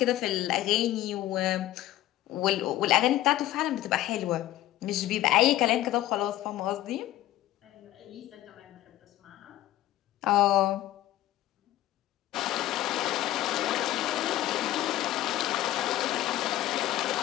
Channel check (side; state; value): right; quieter; 14.5 dB